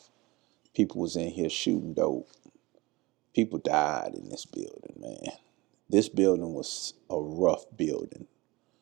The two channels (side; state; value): left; quieter; 22.0 dB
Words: People was in here shooting dope. People died in this building, man. This building was a rough building